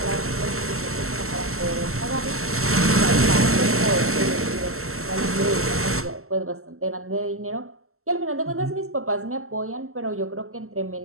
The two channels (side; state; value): left; late; 0.63 ms